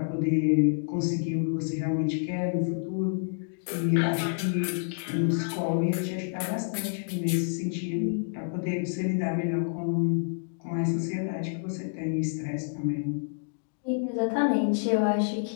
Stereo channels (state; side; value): silent; right; digital silence